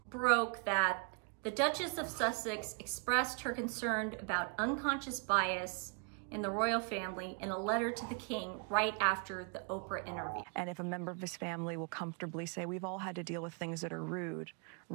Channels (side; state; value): left; quieter; 38.0 dB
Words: broke that the Duchess of Sussex expressed her concern about unconscious bias in the royal family in a letter to the king right after the Oprah interview. And if a member of his family will comfortably say, we've all had to deal with things that are rude.